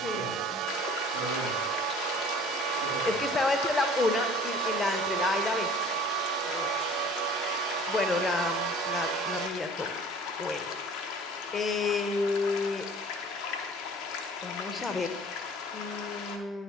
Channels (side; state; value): both; normal; correlation 0.48